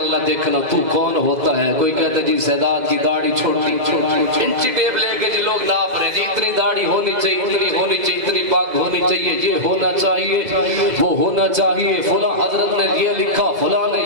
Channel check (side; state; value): left; late; 2.0 ms